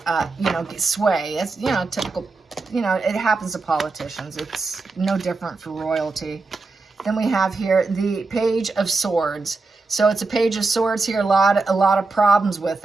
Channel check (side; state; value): left; quieter; 3.8 dB